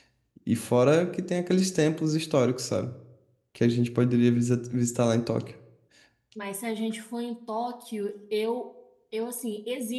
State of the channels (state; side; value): identical; both; correlation 1.00